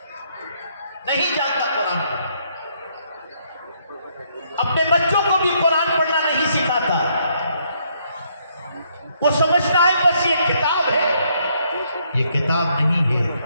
نہیں جانتا قرآن پڑھنا، اپنے بچوں کو بھی قرآن پڑھنا نہیں سکھاتا۔ وہ سمجھتا ہے بس یہ کتاب ہے، یہ کتاب نہیں ہے،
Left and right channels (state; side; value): inverted; both; correlation -0.71